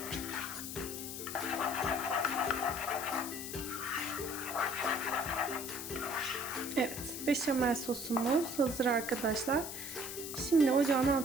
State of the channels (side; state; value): left; noise; hiss, 7 dB below the sound